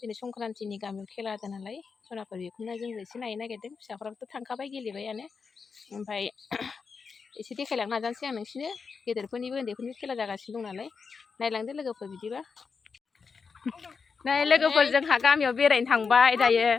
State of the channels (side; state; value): right; quieter; 5.3 dB